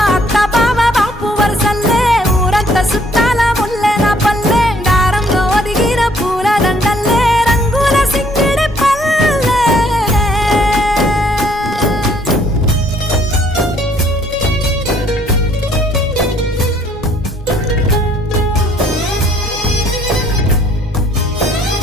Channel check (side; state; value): both; normal; correlation 0.63